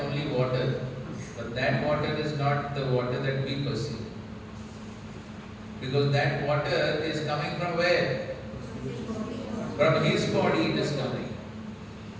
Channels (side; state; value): both; identical; correlation 1.00